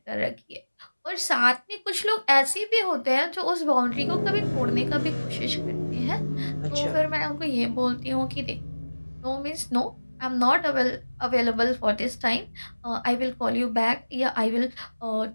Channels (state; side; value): inverted; both; correlation -1.00